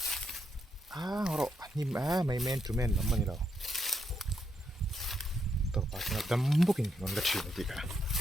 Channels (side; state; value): both; normal; correlation 0.79